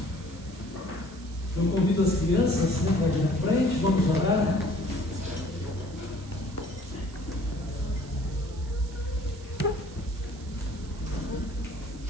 Eu convido as crianças para vir à frente, vamos orar.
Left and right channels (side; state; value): right; noise; hiss, 21 dB below the sound